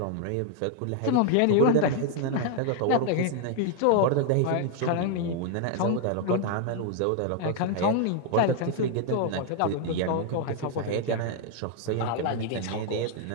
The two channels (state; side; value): different; both; correlation 0.00